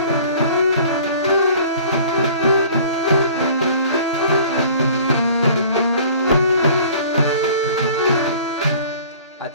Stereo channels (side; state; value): both; inverted; correlation -0.48